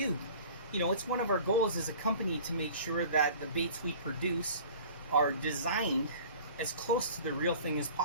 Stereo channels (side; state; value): both; inverted; correlation -0.44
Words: You know, it's one of our goals as a company to make sure that the baits we produce are designed as close to the real thing as